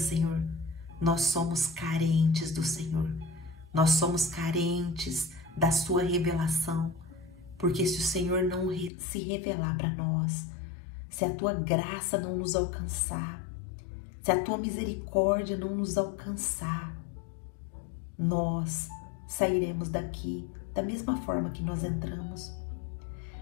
Nós somos carentes do Senhor. Nós somos carentes da Sua revelação. Porque se o Senhor não se revelar para nós, se a Tua graça não nos alcançar, se a Tua misericórdia não nos alcançar, nós sairemos daqui da mesma forma que nós entramos.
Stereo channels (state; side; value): drops out; right; at 8.9 s